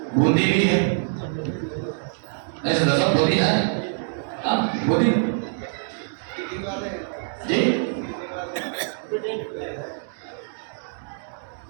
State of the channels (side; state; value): left; silent; digital silence